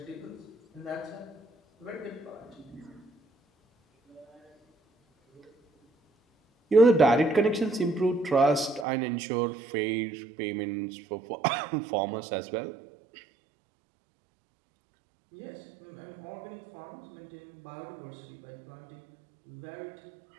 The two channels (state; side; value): drops out; left; at 8.8 s